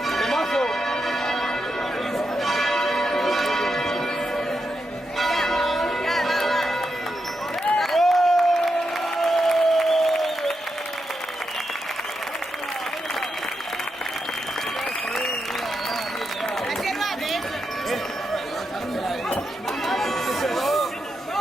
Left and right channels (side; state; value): both; normal; correlation 0.85